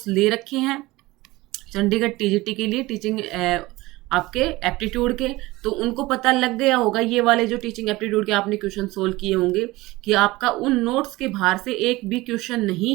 ले रखे हैं, चंडीगढ़ टीजीटी के लिए टीचिंग आपके एप्टीट्यूड के, तो उनको पता लग गया होगा, ये वाले जो टीचिंग एप्टीट्यूड के आपने क्वेश्चन सोल्व किए होंगे, कि आपका उन नोट्स के बाहर से एक भी क्वेश्चन नहीं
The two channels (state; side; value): quieter; left; 20.1 dB